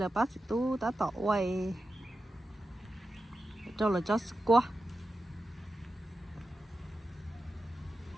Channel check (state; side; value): normal; both; correlation 0.91